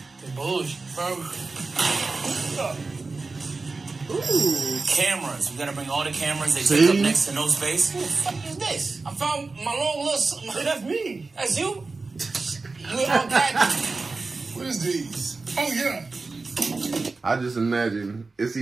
Bullshit, bro. Ooh. Cameras. We gotta bring all the cameras. They See? take up next to no space. What the fuck is this? I found my long little... Hey, that's me. That's you? You unpacked. What is these? Oh, yeah. I just imagine it's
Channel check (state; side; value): quieter; left; 3.9 dB